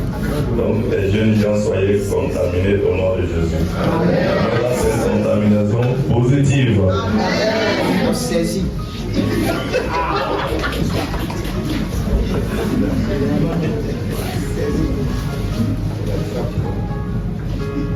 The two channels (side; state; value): both; identical; correlation 1.00